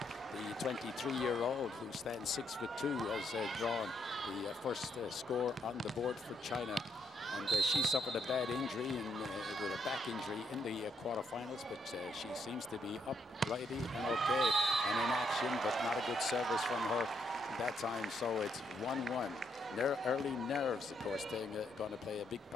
The 23-year-old who stands 6'2" has drawn the first score on the board for China. And she suffered a bad injury with a back injury in the quarterfinals, but she seems to be uprighty and okay and in action, but not a good service from her that time. So it's 1-1. Early nerves, of course, going to play a big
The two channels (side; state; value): both; normal; correlation 0.75